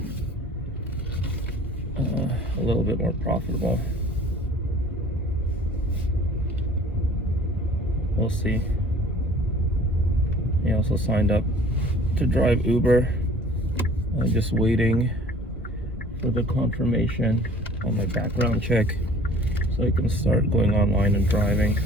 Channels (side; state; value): both; normal; correlation 0.49